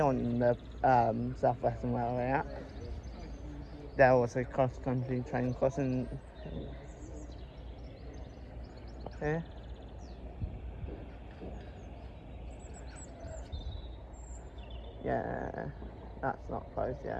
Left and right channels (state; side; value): identical; both; correlation 1.00